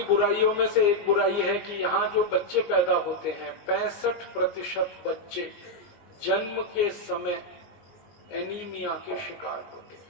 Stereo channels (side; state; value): right; late; 19 ms